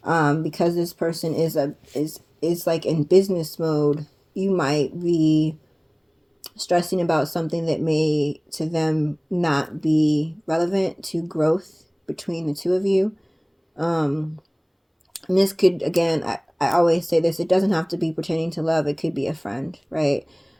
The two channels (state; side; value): identical; both; correlation 1.00